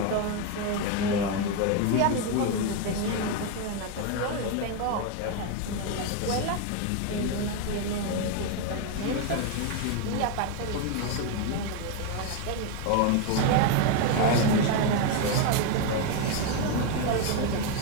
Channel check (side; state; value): both; different; correlation 0.02